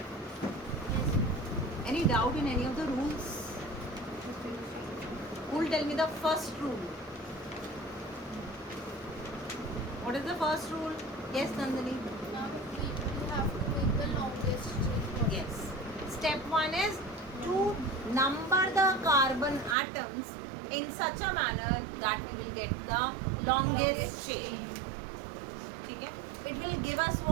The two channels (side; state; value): left; drops out; at 19.8 s